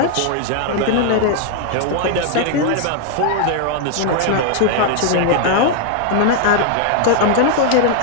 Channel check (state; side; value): different; both; correlation 0.00